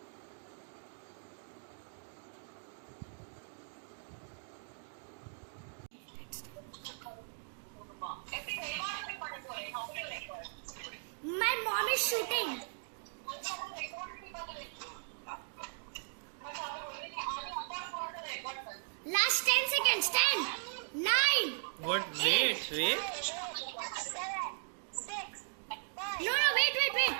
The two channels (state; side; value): silent; left; digital silence